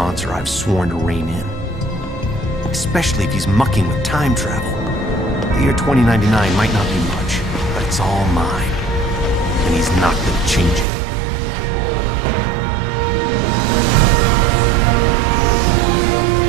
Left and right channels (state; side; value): drops out; left; at 10.9 s